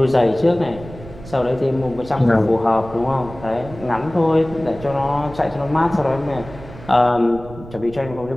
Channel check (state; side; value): noise; right; rumble, 16 dB below the sound